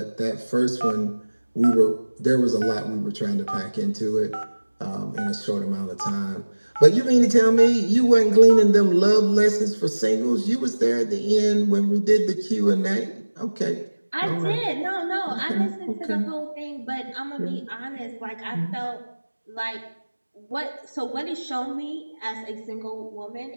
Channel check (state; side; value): inverted; both; correlation -1.00